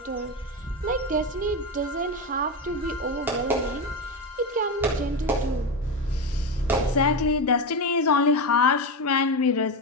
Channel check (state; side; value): normal; both; correlation 0.15